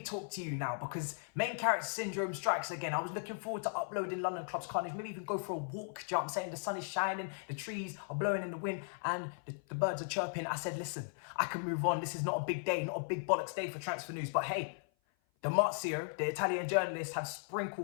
to you now because main character syndrome strikes again. I was looking forward to uploading London Clubs Carnage, maybe even go for a walk. Do you know what I'm saying? The sun is shining, the trees are blowing in the wind and the birds are chirping. I said, listen, I can move on. This is not a big day, not a big bollocks day for transfer news. But hey, the Marzio, the Italian journalists, have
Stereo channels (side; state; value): right; silent; 53 dB below the other